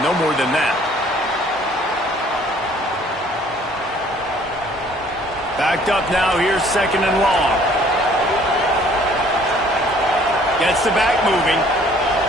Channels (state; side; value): normal; both; correlation 0.57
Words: more than that. Backed up now, here's 2nd and long. Gets the back moving.